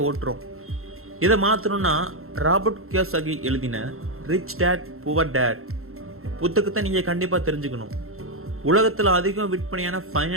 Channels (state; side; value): late; left; 0.62 ms